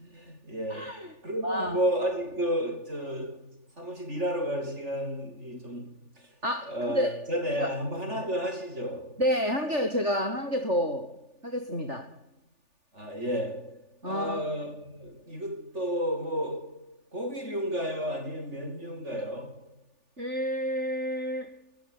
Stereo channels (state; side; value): late; left; 3.4 ms